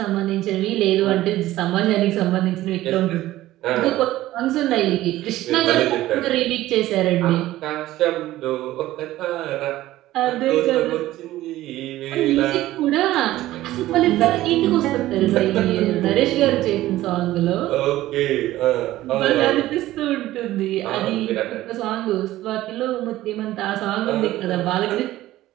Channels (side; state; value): left; quieter; 15.5 dB